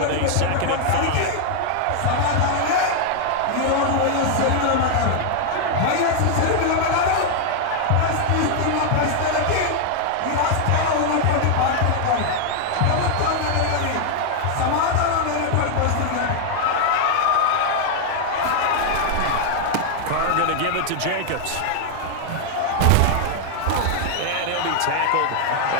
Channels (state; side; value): different; both; correlation 0.00